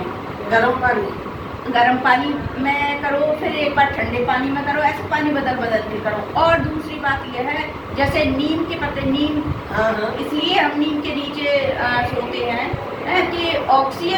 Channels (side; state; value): both; identical; correlation 1.00